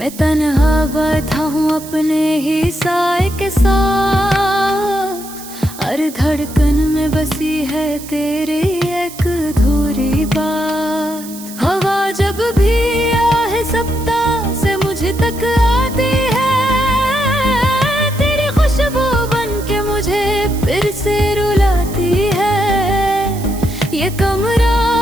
तन्हा बैठा हूँ अपने ही साए के साथ, हर धड़कन में बसी है तेरी एक अधूरी बात। हवा जब भी आहे सप्ताह से मुझे तक आती है, तेरी खुशबू बन के मुझे फिर से रुलाती है। ये कमरा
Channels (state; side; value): noise; right; hiss, 15 dB below the sound